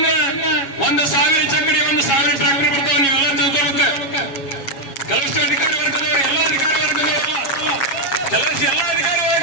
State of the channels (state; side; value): late; right; 7.3 ms